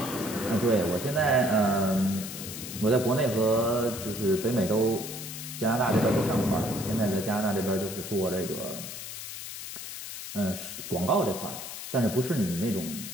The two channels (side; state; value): left; noise; hiss, 9 dB below the sound